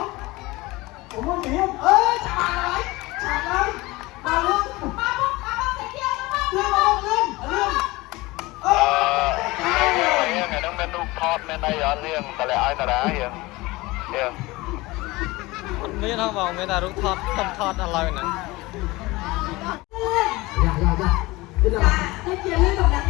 còn mua gì hết chả lại bà luôn ngày đông bên đục thọt bên đây ở riêng tại lại ai ta đá hiền hiền មានហ៎បងមានតែរូបថតខ្ញុំថតឥឡូវហ្នឹង ទៅជាលឿនកំដៅ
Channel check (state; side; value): quieter; right; 21.3 dB